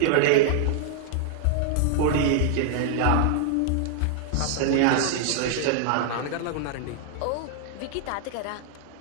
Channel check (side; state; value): both; different; correlation 0.00